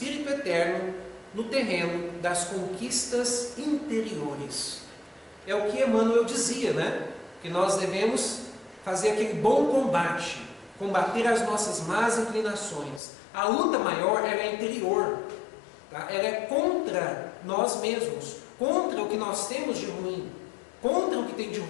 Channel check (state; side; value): drops out; right; at 13.0 s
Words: Eterno no terreno das conquistas interiores. É o que Emmanuel dizia, né? Que nós devemos fazer aquele bom combate, combater as nossas más inclinações. A luta maior ela é interior, tá? Ela é contra nós mesmos, contra o que nós temos de ruim, contra o que tem de